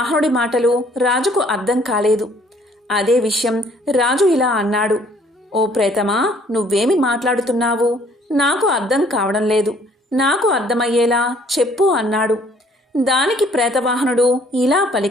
మాటలు రాజుకు అర్థం కాలేదు. అదే విషయం రాజు ఇలా అన్నాడు. ఓ ప్రేతమా, నువ్వేమి మాట్లాడుతున్నావు? నాకు అర్థం కావడం లేదు. నాకు అర్థమయ్యేలా చెప్పు అన్నాడు. దానికి ప్రేతవాహనుడు ఇలా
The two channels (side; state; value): both; normal; correlation 0.60